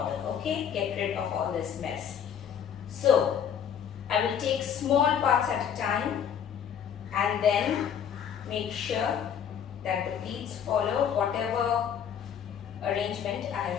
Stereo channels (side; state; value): right; quieter; 8.3 dB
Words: okay? Get rid of all this mess. So I will take small parts at a time and then make sure that the pleats follow whatever arrangement I